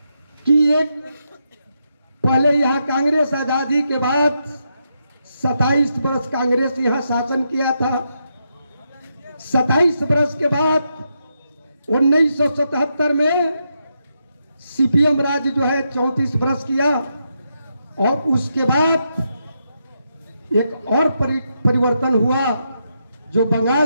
कि एक पहले यहाँ कांग्रेस आजादी के बाद 27 वर्ष कांग्रेस यहाँ शासन किया था। 27 वर्ष के बाद 1977 में सीपीएम राज जो है 34 वर्ष किया और उसके बाद एक और परिवर्तन हुआ जो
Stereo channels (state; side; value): inverted; both; correlation -0.82